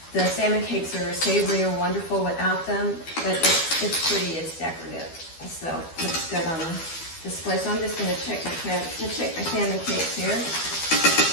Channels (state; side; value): late; right; 12 ms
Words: The salmon cakes are savory and wonderful without them, but it's pretty, it's decorative. So it looks good on the display. So I'm just going to check my salmon cakes here.